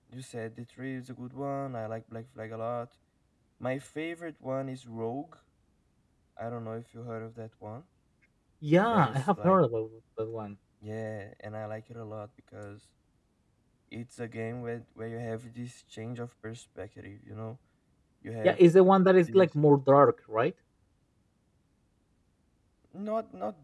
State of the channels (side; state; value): both; identical; correlation 1.00